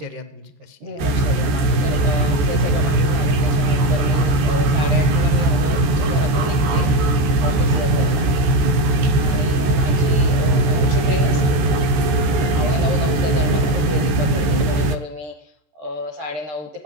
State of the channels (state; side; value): late; left; 14 ms